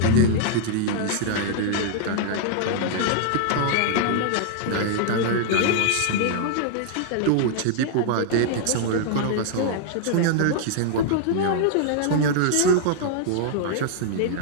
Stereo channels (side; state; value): both; different; correlation -0.01